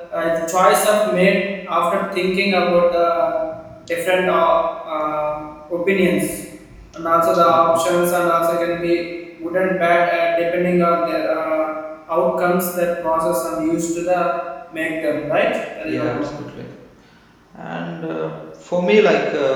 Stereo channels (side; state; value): both; identical; correlation 1.00